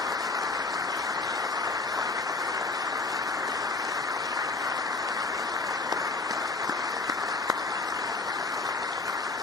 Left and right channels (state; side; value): quieter; right; 3.6 dB